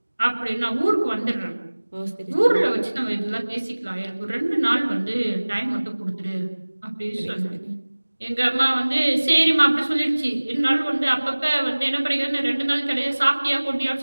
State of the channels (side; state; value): both; inverted; correlation -1.00